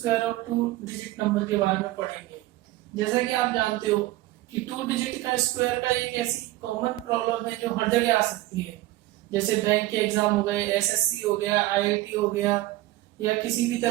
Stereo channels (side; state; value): left; quieter; 17.0 dB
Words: of two digit number के बारे में पढ़ेंगे। जैसा कि आप जानते हो कि टू डिजिट का स्क्वायर का एक ऐसी कॉमन प्रॉब्लम है जो हर जगह आ सकती है। जैसे बैंक के एग्जाम हो गए, एसएससी हो गया, आईआईटी हो गया, या किसी भी